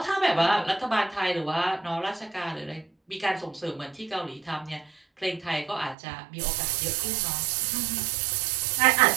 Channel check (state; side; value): drops out; left; at 6.0 s